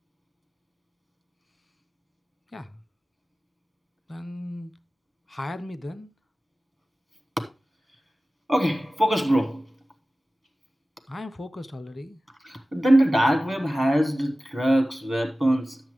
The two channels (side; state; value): both; normal; correlation 0.96